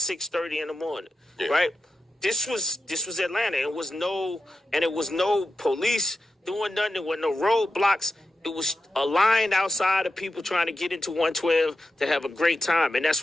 in the morning. Yeah. Right? This was Atlanta. It was no police doing nothing. There were no roadblocks. It was a line outside of people trying to get into 112 to have a great time, and that's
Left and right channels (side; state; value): both; normal; correlation 0.90